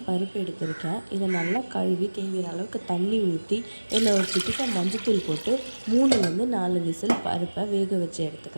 பருப்பு எடுத்திருக்கேன். இதை நல்லா கழுவி தேவையான அளவுக்கு தண்ணி ஊற்றி இதில் ஒரு சிட்டிக்க மஞ்சத்தூள் போட்டு 3லேருந்து 4 விசில் பருப்பை வேக வச்சு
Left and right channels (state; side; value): inverted; both; correlation -1.00